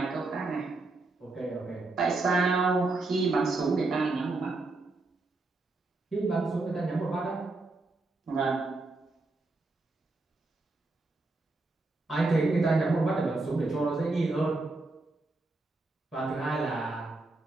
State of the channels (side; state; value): left; quieter; 3.3 dB